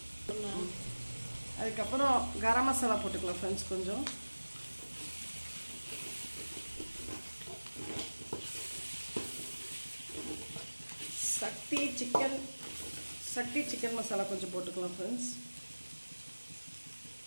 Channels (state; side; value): inverted; both; correlation -1.00